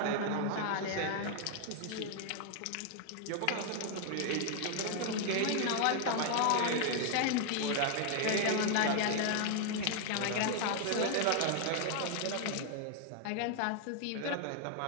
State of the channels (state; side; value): different; both; correlation 0.00